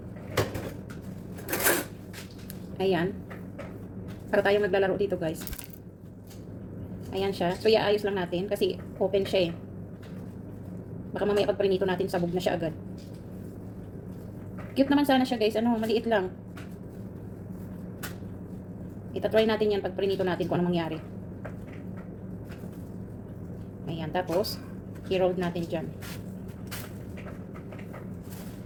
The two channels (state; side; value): identical; both; correlation 1.00